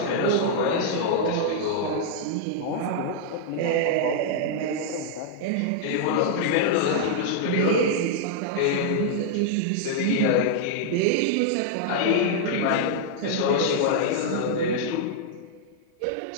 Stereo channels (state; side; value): different; both; correlation -0.01